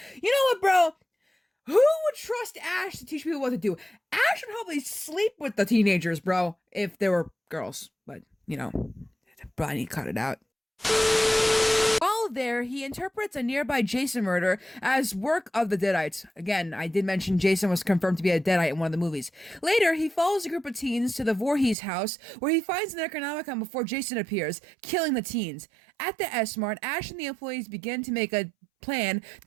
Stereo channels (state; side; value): drops out; left; at 21.8 s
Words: You know what, bro? Who would trust Ash to teach people what to do? Ash would probably sleep with the teenagers, bro, if they were girls. But, probably need to cut it out. While there, he interprets a nearby Jason murder as work of the Deadites. Again, I did mention Jason was confirmed to be a Deadite in one of the movies. Later, he follows a group of teens to the Voorhees house, where he finds the Necronomicon before Jason appears, killing the teens. At the S-Mart, Ash and the employees begin to make a plan to